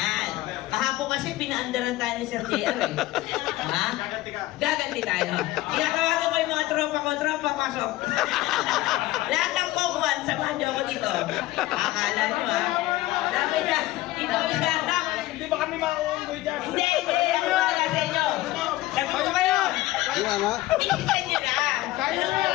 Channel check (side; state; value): right; quieter; 17.3 dB